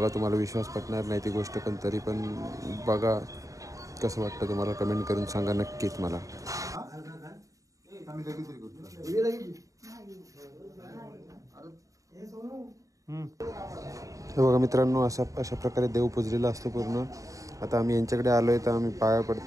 तुम्हाला विश्वास पटणार नाही ती गोष्ट, पण तरी पण बघा कसं वाटतं तुम्हाला. कमेंट करून सांगा नक्कीच मला. बघा मित्रांनो, अशा प्रकारे देव पुजलेला असतो पूर्ण. आता आम्ही यांच्याकडे आलो आहे तर आम्ही पाया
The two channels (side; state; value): left; late; 0.16 ms